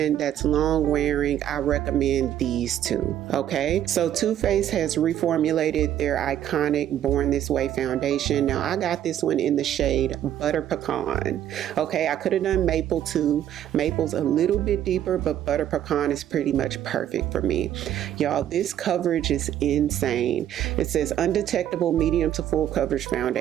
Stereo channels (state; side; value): quieter; left; 11.1 dB